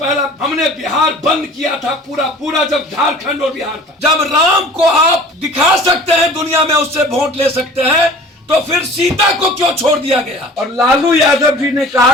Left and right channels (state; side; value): normal; both; correlation 0.45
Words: हमने बिहार बंद किया था, पूरा जब झारखंड और बिहार था। जब राम को आप दिखा सकते हैं दुनिया में, उससे वोट ले सकते हैं, तो फिर सीता को क्यों छोड़ दिया गया? और लालू यादव जी ने